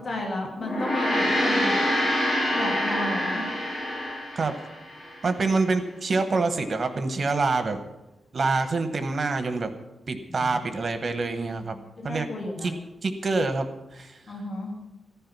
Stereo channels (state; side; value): normal; both; correlation 0.88